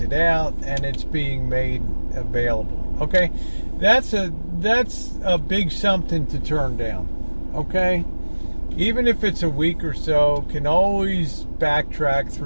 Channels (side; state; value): both; inverted; correlation -1.00